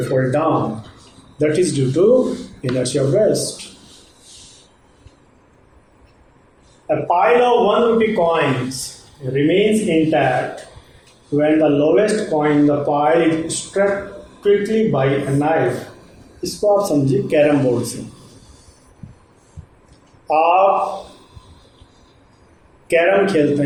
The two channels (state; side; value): identical; both; correlation 1.00